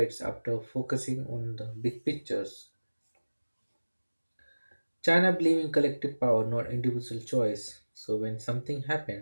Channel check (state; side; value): inverted; both; correlation -1.00